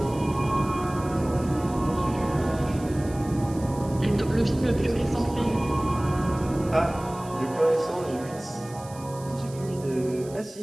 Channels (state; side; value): noise; right; hiss, 20 dB below the sound